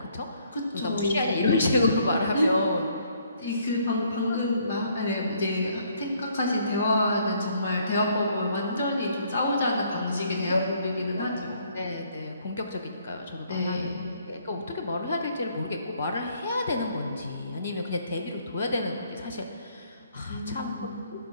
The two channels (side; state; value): both; inverted; correlation -0.66